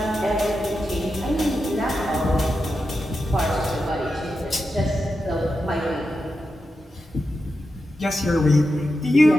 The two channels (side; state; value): both; normal; correlation 0.89